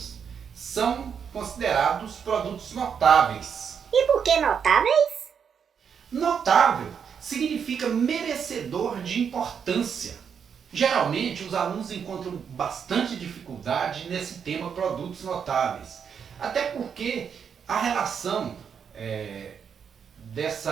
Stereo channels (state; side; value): quieter; left; 7.2 dB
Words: são considerados produtos notáveis. E por que notáveis? Notável significa merecedor de importância. Geralmente os alunos encontram bastante dificuldade nesse tema produtos notáveis. Até porque a relação